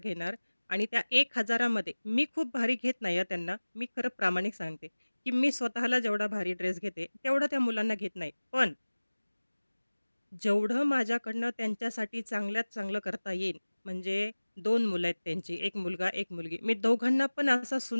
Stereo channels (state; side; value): inverted; both; correlation -1.00